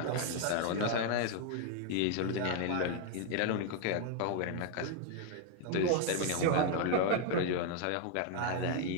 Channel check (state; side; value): different; both; correlation 0.00